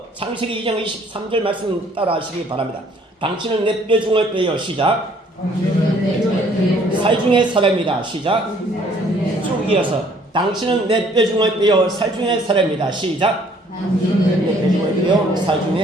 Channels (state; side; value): normal; both; correlation 0.60